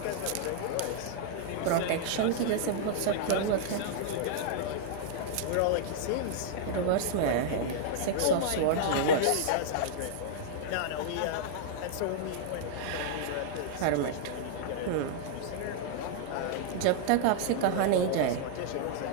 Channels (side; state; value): both; different; correlation -0.01